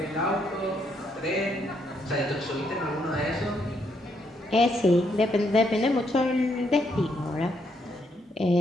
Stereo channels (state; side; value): normal; both; correlation 0.75